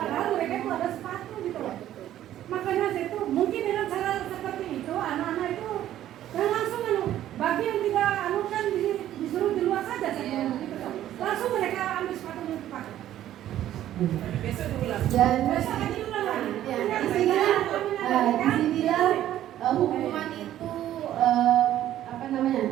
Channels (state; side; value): quieter; left; 12.4 dB